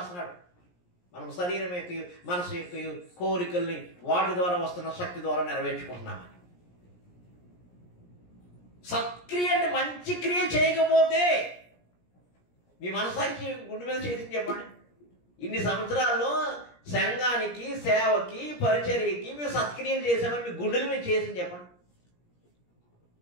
మనం శరీరం యొక్క మనసు యొక్క కోరికల్ని వాటి ద్వారా వస్తున్న శక్తి ద్వారా నెరవేర్చుకుంటున్నామని. సత్క్రియ అంటే మంచి క్రియ చేయకపోతే మీ మనసానికి గుండె మీద చేసి చెప్పండి, ఇన్ని సంవత్సరాల్లో సంఘానికి, సేవకి, పరిచర్యకి మేము సత్క్రియలు చేసామని మీ గుండెల మీద చేసి చెప్పండి.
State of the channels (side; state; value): right; late; 17 ms